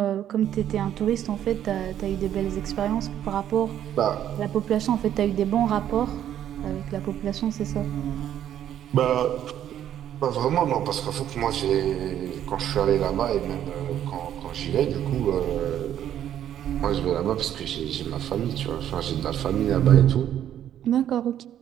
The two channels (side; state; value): left; quieter; 10.7 dB